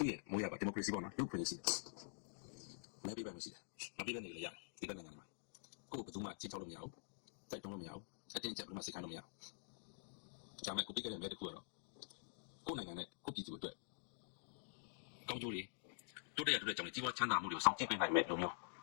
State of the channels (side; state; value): right; silent; digital silence